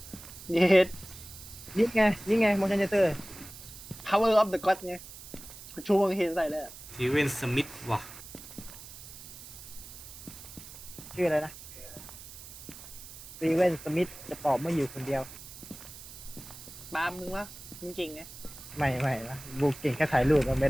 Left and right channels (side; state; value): right; noise; hiss, 15 dB below the sound